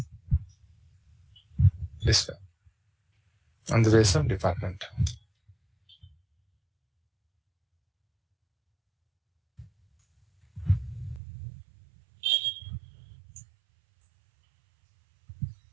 This way, on the basis of department.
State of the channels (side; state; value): left; drops out; at 11.2 s